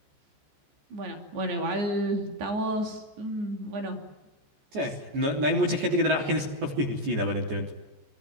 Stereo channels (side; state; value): left; late; 14 ms